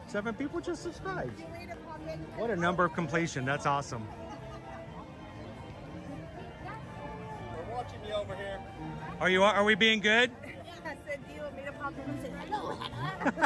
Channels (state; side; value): identical; both; correlation 1.00